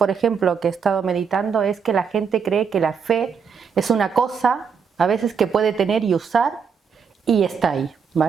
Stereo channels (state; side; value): quieter; left; 6.3 dB